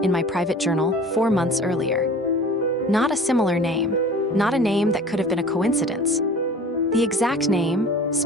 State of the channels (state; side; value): normal; both; correlation 0.43